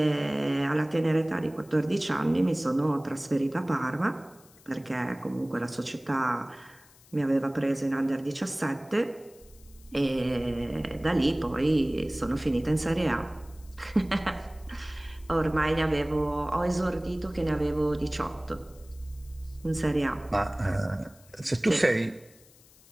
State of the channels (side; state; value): left; noise; hiss, 26 dB below the sound